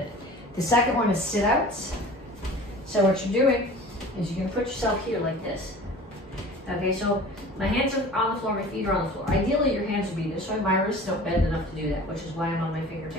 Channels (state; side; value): normal; both; correlation 0.42